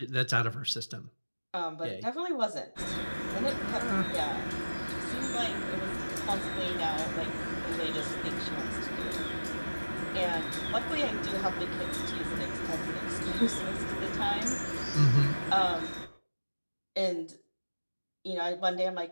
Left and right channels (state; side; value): inverted; both; correlation -1.00